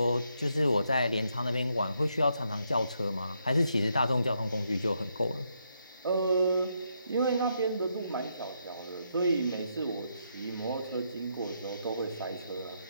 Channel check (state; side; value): inverted; both; correlation -0.78